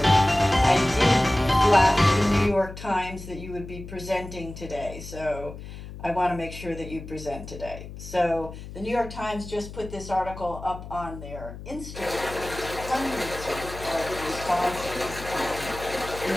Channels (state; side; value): noise; left; hum, 12 dB below the sound